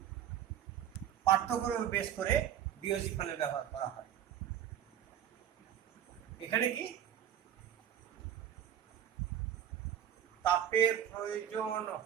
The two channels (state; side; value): quieter; left; 10.2 dB